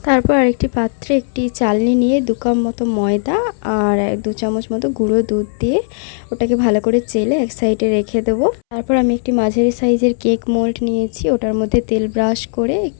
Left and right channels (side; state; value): right; silent; 69 dB below the other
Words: তারপর আরেকটি পাত্রে একটি চালনি নিয়ে 2 কাপ মতো ময়দা আর 2 চামচ মতো গুঁড়ো দুধ দিয়ে ওটাকে ভালো করে চেলে এক সাইডে রেখে দেব। তারপর আমি একটি মাঝারি সাইজের কেক মোল্ড নিয়েছি, ওটার মধ্যে তেল ব্রাশ করে